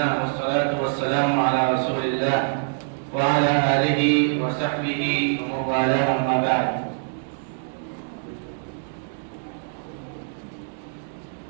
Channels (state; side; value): silent; left; digital silence